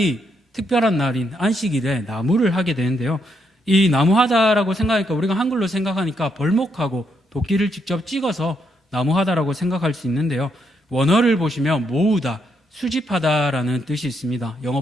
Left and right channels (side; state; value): both; normal; correlation 0.77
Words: 특별한 날인 안식일에 나무를 하게 되는데요. 이 나무하다라고 생각하니까, 우리가 한글로 생각하니까 벌목하고 도끼를 직접 찍어서 나무하다라고 생각할 수 있는데요. 원어를 보시면 모으다, 수집하다라는 뜻이 있습니다.